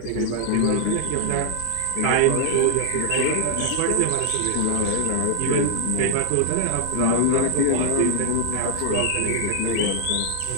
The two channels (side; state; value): both; different; correlation 0.00